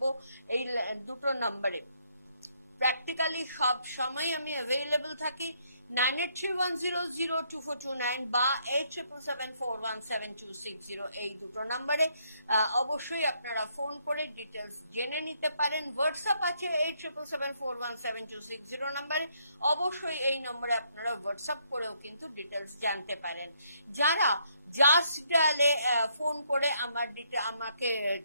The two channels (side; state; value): both; inverted; correlation -0.72